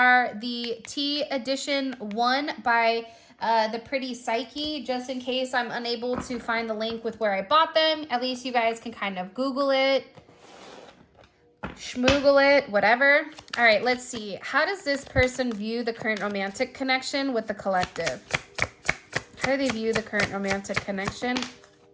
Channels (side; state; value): both; identical; correlation 1.00